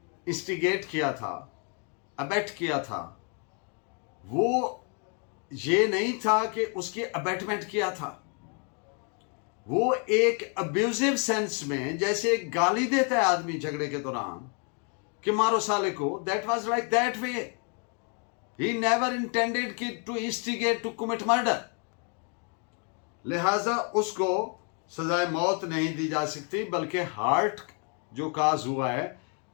इंस्टिगेट किया था, अबेट किया था, वो ये नहीं था कि उसकी अबेटमेंट किया था। वो एक अब्यूजिव सेंस में, जैसे एक गाली देता है आदमी झगड़े के दौरान कि मारो साले को, that was like that way. He never intended to instigate to commit murder. लिहाजा उसको सजाए मौत नहीं दी जा सकती, बल्कि हार्ट जो काज हुआ है,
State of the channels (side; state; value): right; quieter; 39.1 dB